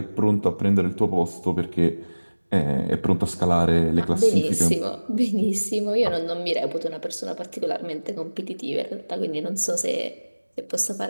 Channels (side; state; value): both; inverted; correlation -1.00